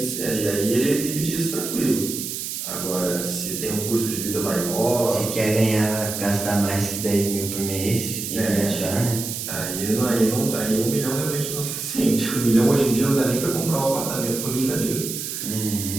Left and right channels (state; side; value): noise; right; hiss, 5 dB below the sound